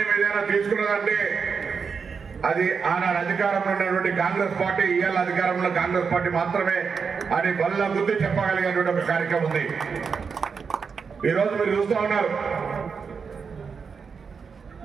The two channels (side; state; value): left; quieter; 5.7 dB